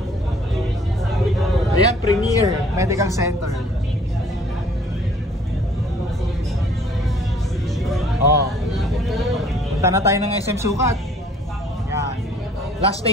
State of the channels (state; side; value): normal; both; correlation 0.57